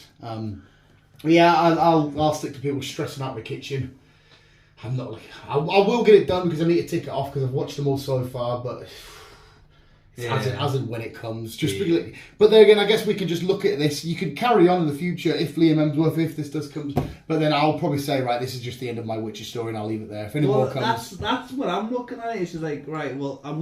Yeah, I'll stick to people stressing out the kitchen. I'm not like I will get it done because I need to tick it off because I've watched them all so far, but as and when it comes. But then again, I guess we can just look at this. You can carry on in the future if Liam Hemsworth, if this does come, but then I'll probably say, right, this is just the end of my Witcher story, and I'll leave it there. If any more comes, that's what I'm looking at. It's just like, right, well, I'm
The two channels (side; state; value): both; identical; correlation 1.00